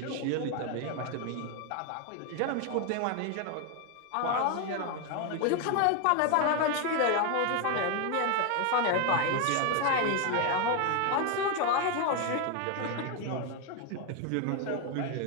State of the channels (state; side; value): different; both; correlation 0.01